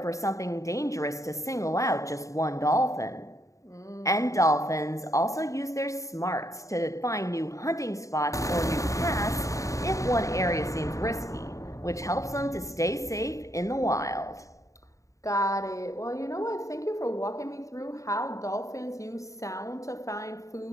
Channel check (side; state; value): right; late; 0.16 ms